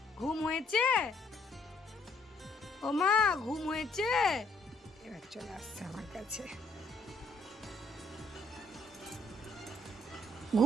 ঘুম হয়েছে? ও মা, ঘুম হয়েছে? এবার চলে আসছে আমার কাছে।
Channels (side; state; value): both; normal; correlation 0.67